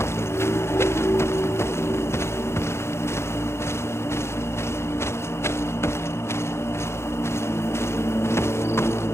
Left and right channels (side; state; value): right; late; 0.13 ms